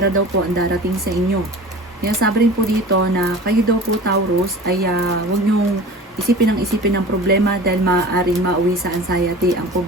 daw po ang darating sa inyo. Sabi rin po dito na kayo daw po, Taurus, ay huwag niyong isipin ng problema dahil maaaring mauwi sa anxiety ang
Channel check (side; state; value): both; normal; correlation 0.39